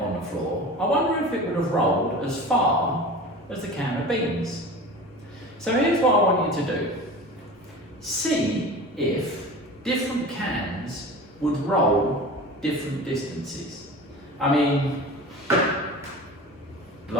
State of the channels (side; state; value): both; normal; correlation 0.35